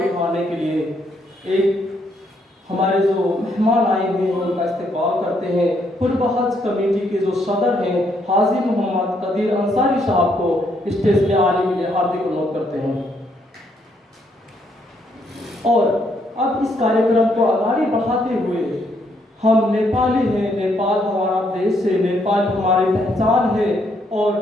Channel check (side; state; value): both; normal; correlation 0.73